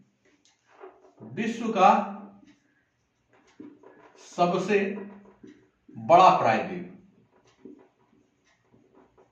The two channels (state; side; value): identical; both; correlation 1.00